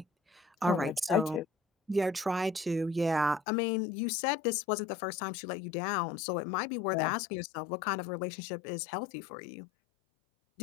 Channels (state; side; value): drops out; right; at 3.4 s